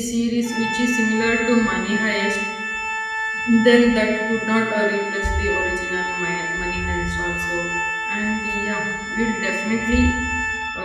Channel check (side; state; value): both; identical; correlation 1.00